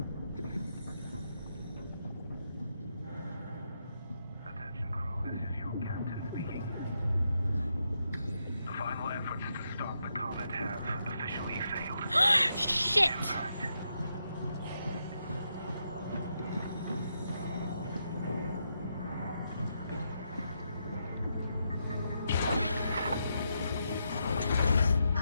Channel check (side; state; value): both; inverted; correlation -0.82